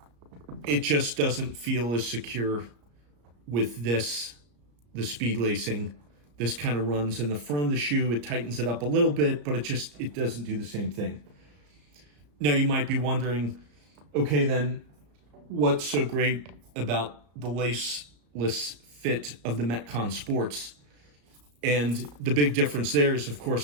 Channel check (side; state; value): left; late; 34 ms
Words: It just doesn't feel as secure with the speed lacing. This kind of runs in the front of the shoe. It tightens it up a little bit, but it doesn't do the same thing. Now you might be wondering, okay, then what's so great about the laceless fit of the Metcon Sports? And the big difference there is, of